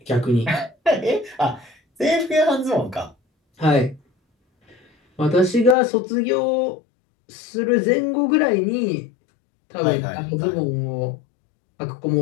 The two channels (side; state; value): right; drops out; at 5.8 s